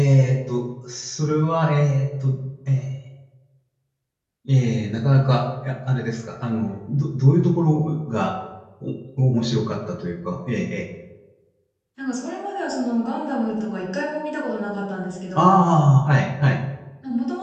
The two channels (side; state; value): both; identical; correlation 1.00